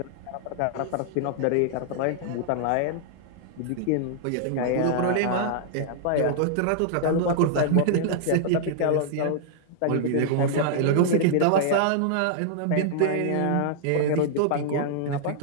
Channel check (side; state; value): both; different; correlation -0.01